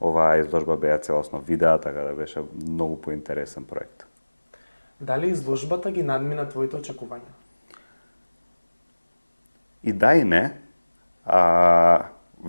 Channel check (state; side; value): inverted; both; correlation -1.00